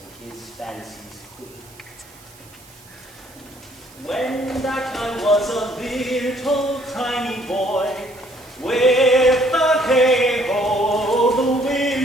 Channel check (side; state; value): right; noise; hiss, 25 dB below the sound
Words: and his fancies queen. When that I was a little tiny boy, with the hay-ho, the